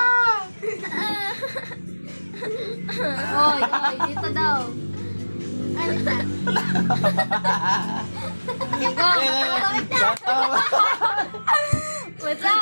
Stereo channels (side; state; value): both; inverted; correlation -1.00